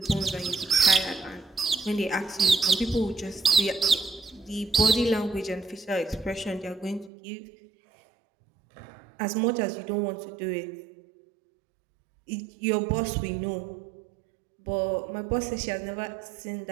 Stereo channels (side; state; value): left; drops out; at 7.1 s